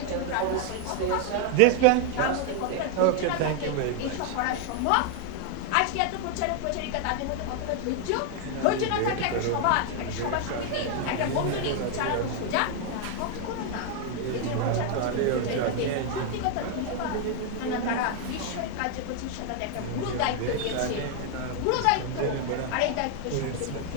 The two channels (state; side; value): different; both; correlation 0.00